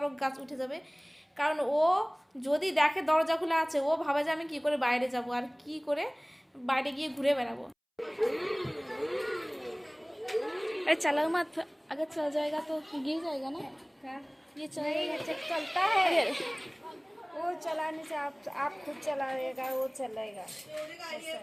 গাছ উঠে যাবে। কারণ ও যদি দেখে দরজা খোলা আছে ও ভাবে যে আমি কী করে বাইরে যাব আর কি করে বাইরে গিয়ে ঘুরে বেড়াবো। अरे चलो मत, अगर चल जाएगा तो गिर जाएगा ना। ये चलेगा चलता है वो चलाने से आप खुद चलाएगा वो चलेगा,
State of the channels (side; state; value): both; identical; correlation 1.00